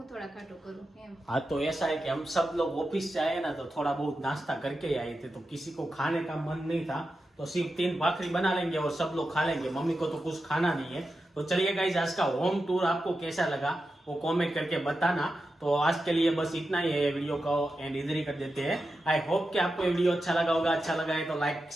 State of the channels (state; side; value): normal; both; correlation 0.90